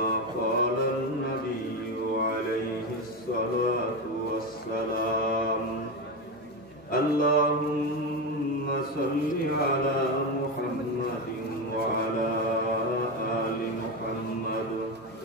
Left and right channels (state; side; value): normal; both; correlation 0.15